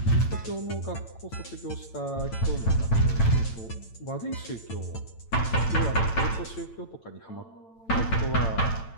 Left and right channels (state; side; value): late; right; 8.9 ms